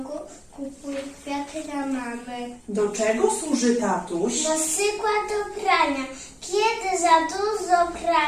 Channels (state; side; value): identical; both; correlation 1.00